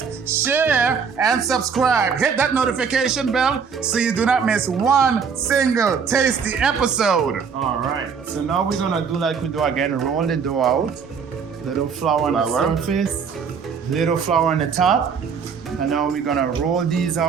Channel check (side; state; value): left; quieter; 6.3 dB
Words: share, and subscribe. Hit that notification bell so you do not miss one single tasty episode. All right. So now we're gonna do like we do again. Roll the dough out. Little flour on the surface. Little flour on the top. And now we're gonna roll these